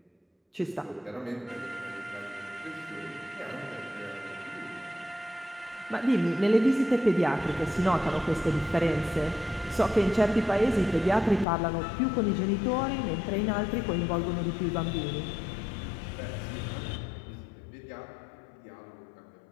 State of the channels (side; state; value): right; drops out; at 11.5 s